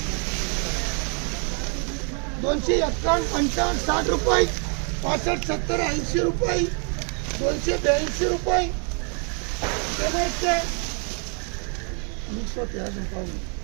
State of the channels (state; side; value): quieter; left; 39.1 dB